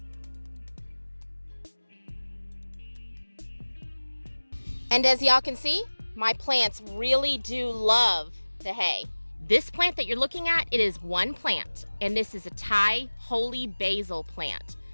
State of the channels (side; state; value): both; inverted; correlation -1.00